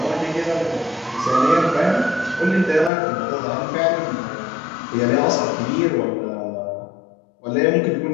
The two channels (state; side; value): drops out; right; at 2.9 s